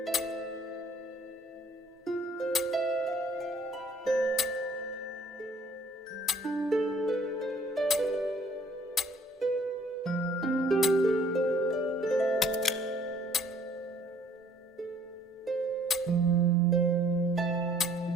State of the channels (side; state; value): both; normal; correlation 0.59